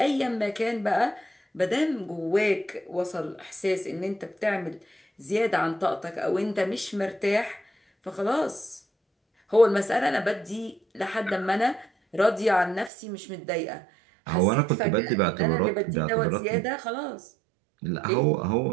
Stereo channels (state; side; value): drops out; left; at 12.9 s